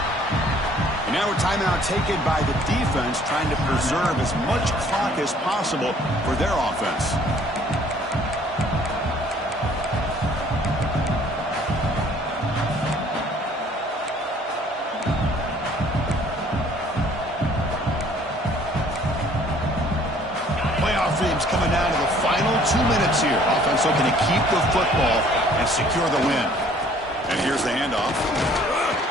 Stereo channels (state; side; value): normal; both; correlation 0.57